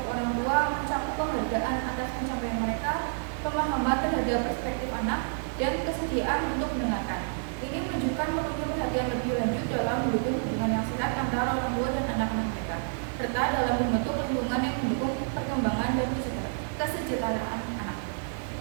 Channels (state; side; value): silent; left; digital silence